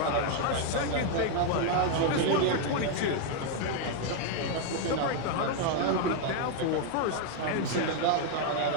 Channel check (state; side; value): different; both; correlation 0.00